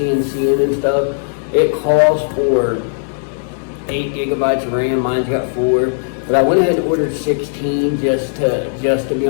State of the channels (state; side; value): silent; right; digital silence